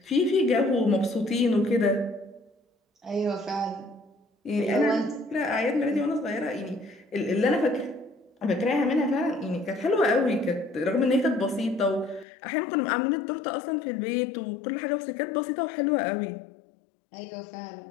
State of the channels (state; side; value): drops out; right; at 12.2 s